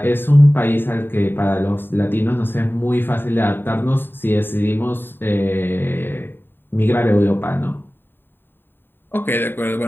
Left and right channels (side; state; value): right; late; 0.097 ms